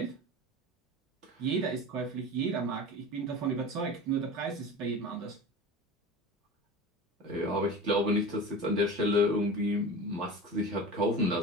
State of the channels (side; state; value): both; normal; correlation 0.32